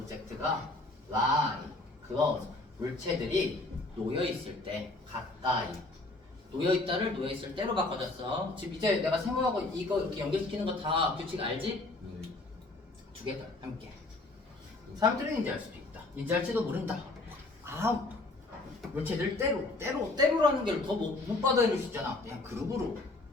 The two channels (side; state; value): right; quieter; 3.0 dB